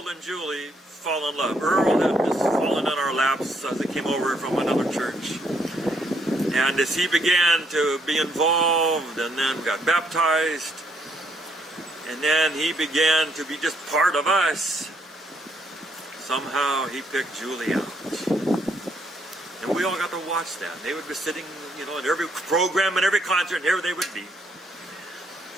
and Julie fall in love. Earl had just fallen in our laps as he came over from another church. And as he began to be involved and then got baptized, and then he began to be just part of us, somehow he picked Julie out. And we all got to watch that. They would be sitting, in every program and every concert, and here they would be.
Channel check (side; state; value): both; normal; correlation 0.71